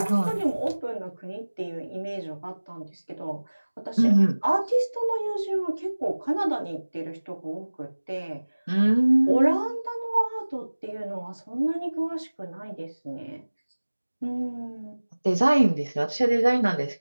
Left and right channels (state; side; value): inverted; both; correlation -1.00